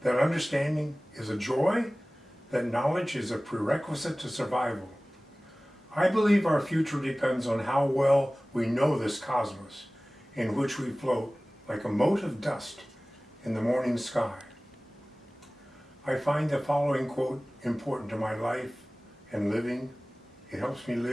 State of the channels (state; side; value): normal; both; correlation 0.98